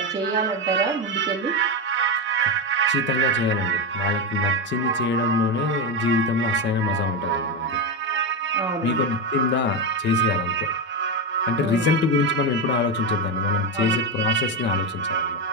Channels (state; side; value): normal; both; correlation 0.12